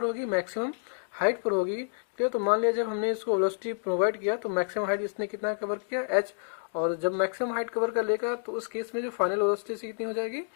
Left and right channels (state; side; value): silent; right; digital silence